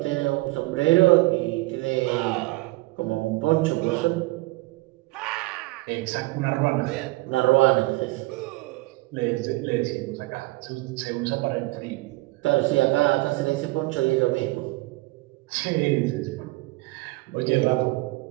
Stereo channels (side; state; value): left; quieter; 21.5 dB